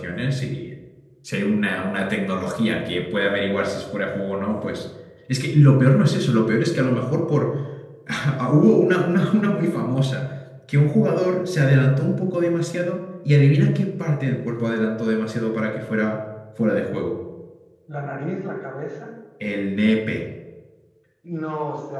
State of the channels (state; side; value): identical; both; correlation 1.00